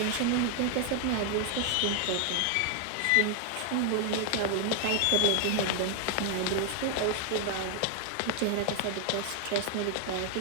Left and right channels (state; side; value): different; both; correlation 0.01